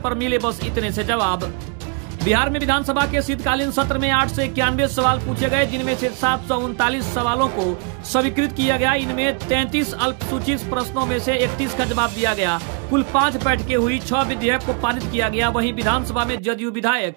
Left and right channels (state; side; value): quieter; left; 34.6 dB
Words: मिले बस इतने से जवाब। बिहार में विधानसभा के शीतकालीन सत्र में 891 सवाल पूछे गए, जिनमें से 739 सवालों को स्वीकृत किया गया। इनमें 33 अल्पसूचित प्रश्नों में से 31 का जवाब दिया गया। कुल 5 बैठकें हुई, 6 विधेयक को पारित किया गया। वहीं विधानसभा में जदयू विधायक